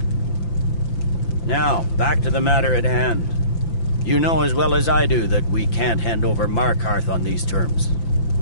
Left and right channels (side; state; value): right; late; 5.9 ms